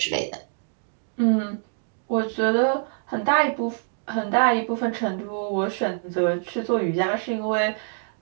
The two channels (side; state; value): left; silent; digital silence